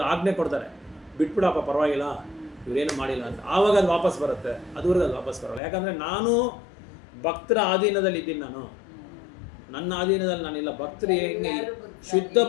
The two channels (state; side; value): drops out; right; at 5.6 s